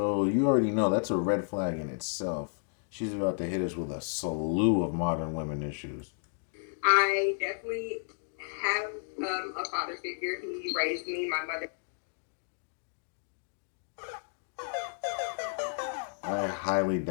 you already know that's a red flag in itself. She's about to hit us with a slew of modern women issues. I definitely have a father figure. He raised me, my mother. I highly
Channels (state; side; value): silent; right; digital silence